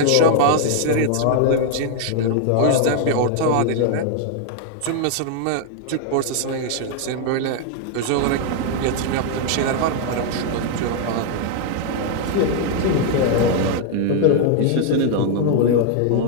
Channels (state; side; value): different; both; correlation 0.00